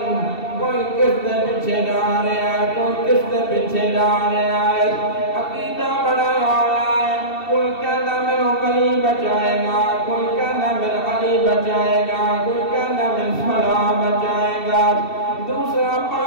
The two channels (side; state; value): right; late; 2.7 ms